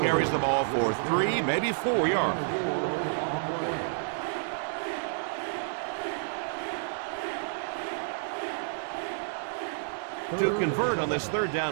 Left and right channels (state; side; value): silent; left; 58 dB below the other